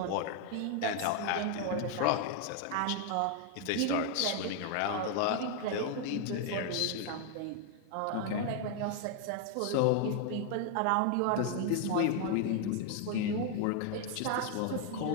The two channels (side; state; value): both; different; correlation 0.00